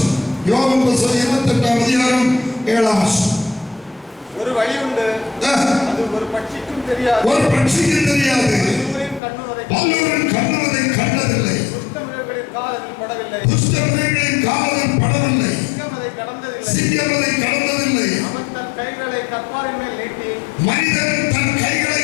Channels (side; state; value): right; drops out; at 9.2 s